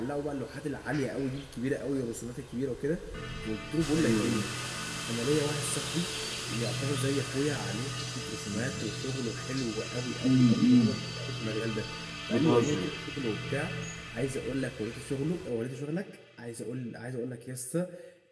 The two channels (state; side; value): identical; both; correlation 1.00